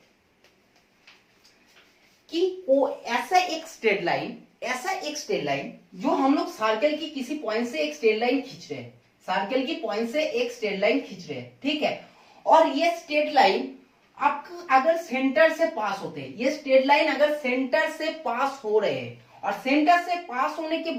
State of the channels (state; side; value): identical; both; correlation 1.00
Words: वो ऐसा एक स्ट्रेट लाइन जो हम लोग सर्कल की किसी पॉइंट से एक स्ट्रेट लाइन खींच रहे हैं, सर्कल की पॉइंट से एक स्ट्रेट लाइन खींच रहे हैं, ठीक है। और ये स्ट्रेट लाइन आपका अगर सेंटर से पास होते हैं, ये स्ट्रेट लाइन अगर सेंटर से पास हो रहे हैं और सेंटर से पास होने के